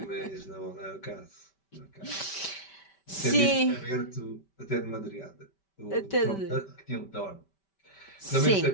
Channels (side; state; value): right; late; 5.1 ms